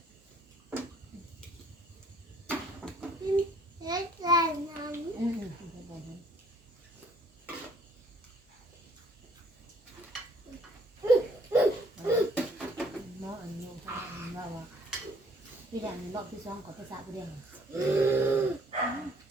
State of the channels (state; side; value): normal; both; correlation 0.60